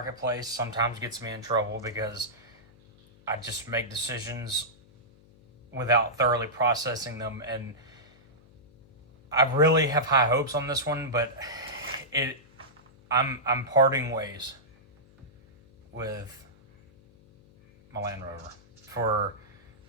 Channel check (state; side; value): noise; left; hum, 27 dB below the sound